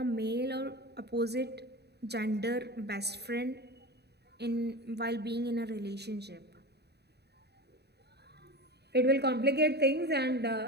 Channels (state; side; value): late; left; 0.48 ms